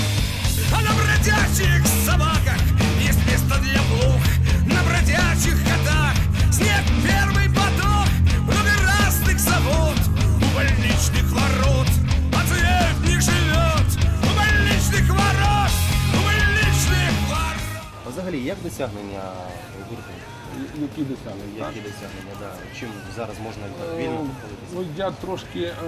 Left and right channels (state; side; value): identical; both; correlation 1.00